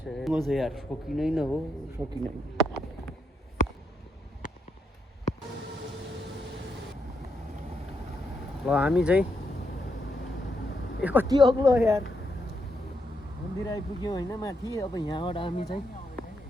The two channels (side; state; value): both; normal; correlation 0.80